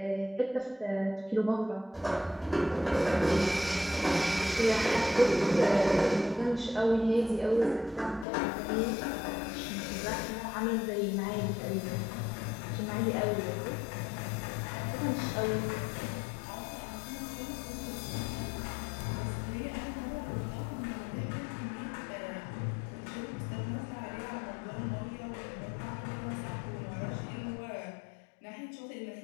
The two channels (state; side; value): drops out; right; at 8.2 s